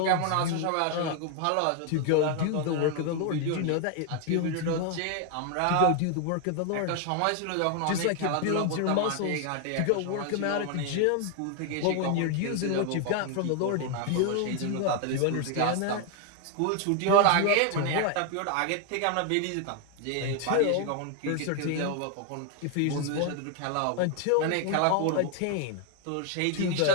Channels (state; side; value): different; both; correlation 0.01